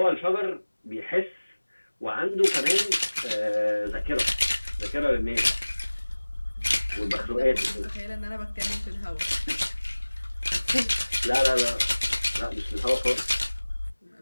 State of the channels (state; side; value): inverted; both; correlation -1.00